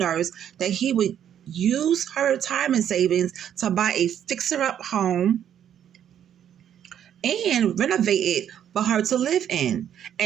that he would use her retirement savings to buy a fixer-up home and renovate it for her to live in.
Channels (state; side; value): quieter; left; 9.7 dB